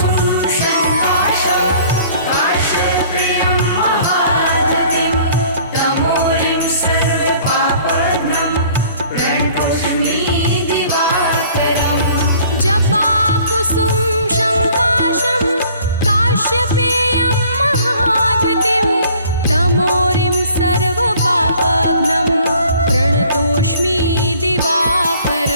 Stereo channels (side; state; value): both; inverted; correlation -0.54